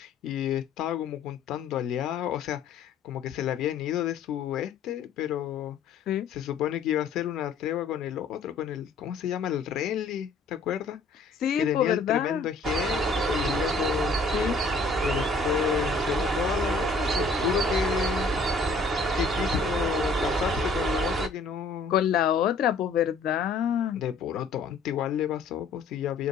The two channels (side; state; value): right; quieter; 3.6 dB